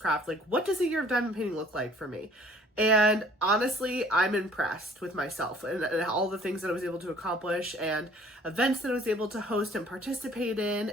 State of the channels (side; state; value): both; normal; correlation 0.55